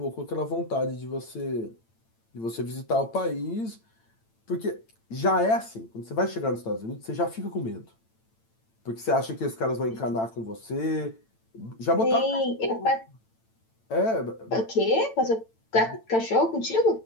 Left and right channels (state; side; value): late; right; 8.9 ms